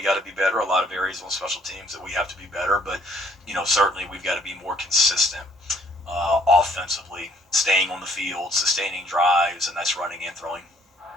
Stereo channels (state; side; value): normal; both; correlation 0.62